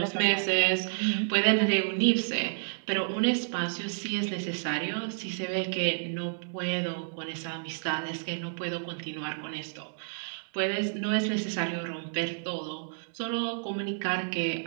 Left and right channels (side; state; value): left; silent; digital silence